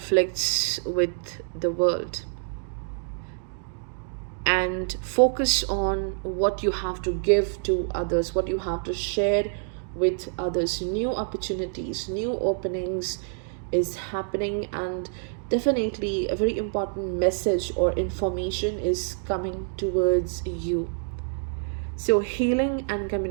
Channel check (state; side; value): silent; left; digital silence